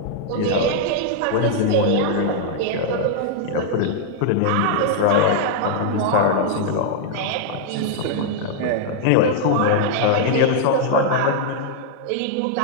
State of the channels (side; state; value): both; different; correlation -0.01